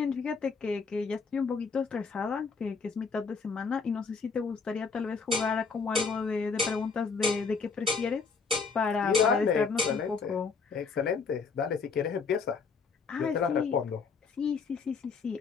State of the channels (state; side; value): quieter; right; 5.1 dB